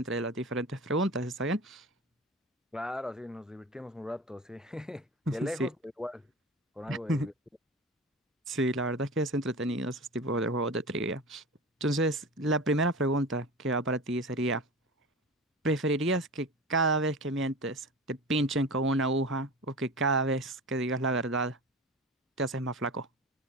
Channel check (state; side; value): normal; both; correlation 0.32